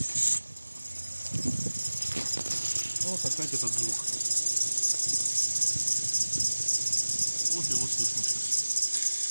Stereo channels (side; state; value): both; inverted; correlation -1.00